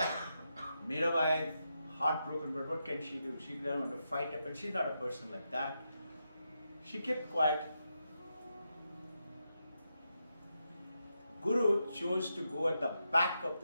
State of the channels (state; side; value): inverted; both; correlation -0.85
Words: Mirabai is heartbroken, but what can she do? She doesn't want to fight up, and she's not a person like that. She kept quiet. Guru chose to go at the back of